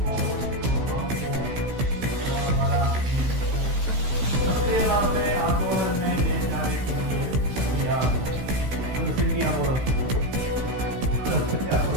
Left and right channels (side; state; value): left; late; 16 ms